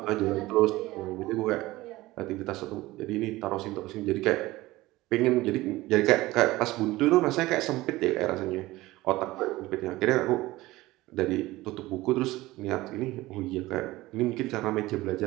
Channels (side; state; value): left; quieter; 18.5 dB